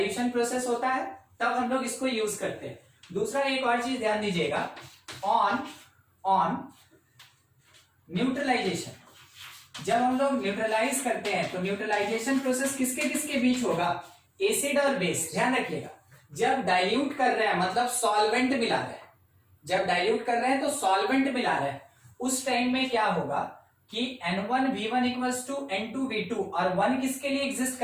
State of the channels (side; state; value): both; identical; correlation 1.00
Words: प्रोसेस होता है तब हम लोग इसको यूज करते हैं। दूसरा एक और चीज ध्यान दीजिएगा, ऑन न्यूट्रलाइजेशन। जब हम लोग न्यूट्रलाइज करते हैं तो न्यूट्रलाइजेशन प्रोसेस किसके किसके बीच होगा, एसिड और बेस। ध्यान रखिएगा, जब डाइल्यूट कर रहे हैं मतलब सॉल्वेंट मिला रहे हैं, जब डाइल्यूट कर रहे हैं तो सॉल्वेंट मिला रहे हैं, उस टाइम में क्या होगा कि N1V1 इक्वल्स टू N2V2, और 1 किसके लिए एग्जिस्ट